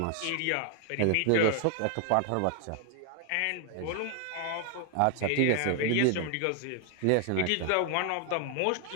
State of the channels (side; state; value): both; different; correlation 0.00